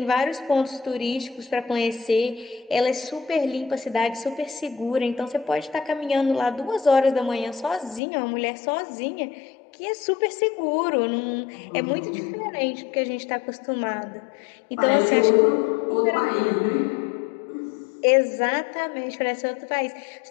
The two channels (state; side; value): drops out; right; at 8.0 s